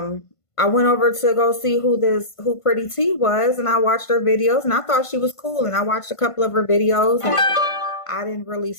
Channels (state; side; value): late; right; 1.5 ms